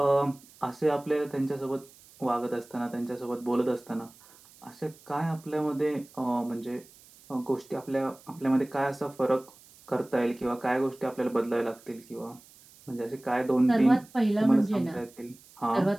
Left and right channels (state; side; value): noise; right; hiss, 25 dB below the sound